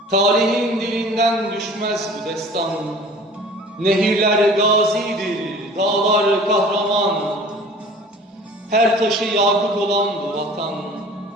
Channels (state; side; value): normal; both; correlation 0.45